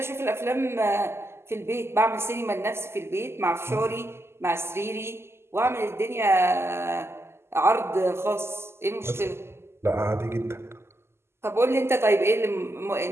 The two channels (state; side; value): late; left; 0.12 ms